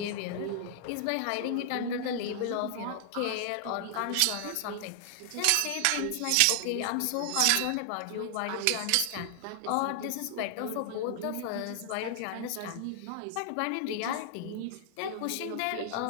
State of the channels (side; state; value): both; different; correlation 0.00